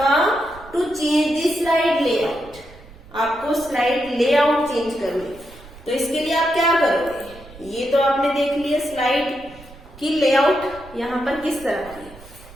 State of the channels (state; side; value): noise; right; rumble, 20 dB below the sound